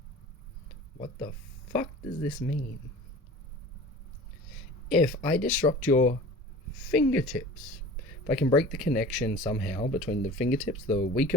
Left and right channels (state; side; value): normal; both; correlation 0.40